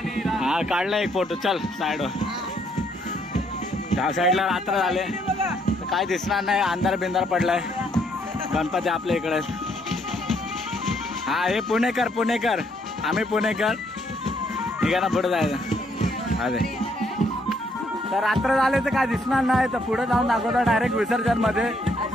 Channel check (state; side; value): normal; both; correlation 0.70